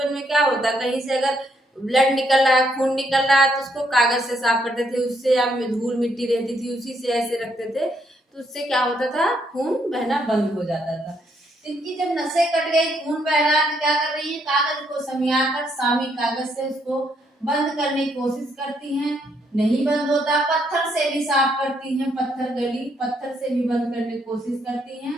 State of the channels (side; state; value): both; normal; correlation 0.73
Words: में क्या होता, कहीं से अगर ब्लड निकल रहा है, खून निकल रहा है, तो उसको कागज से साफ करते थे, उससे या धूल मिट्टी रहती थी उसी से ऐसे रखते थे, तो उससे क्या होता था, खून बहना बंद हो जाता था। इनकी जब नसें कट गई, खून बह रहा, तो क्या कर रही है, कागज को समियाकर सामी कागज से उसको बंद करने की कोशिश करती हैं, नहीं बंद होता। पत्थर से भी साफ करती हैं, पत्थर गली पत्थर से भी बंद करने की कोशिश करती हैं।